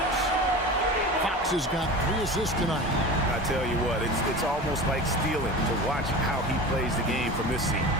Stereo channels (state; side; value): normal; both; correlation 0.33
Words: Fox has got 3 assists tonight. I tell you what, it's almost like stealing to watch how he plays the game from this seat.